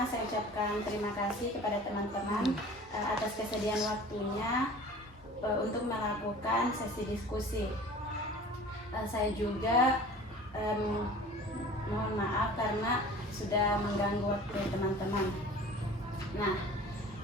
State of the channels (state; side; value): normal; both; correlation 0.43